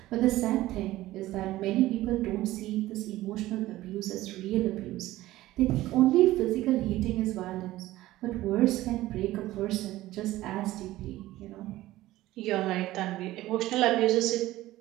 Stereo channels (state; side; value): quieter; left; 16.3 dB